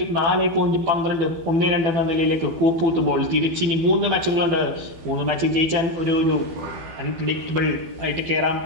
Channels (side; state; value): left; late; 12 ms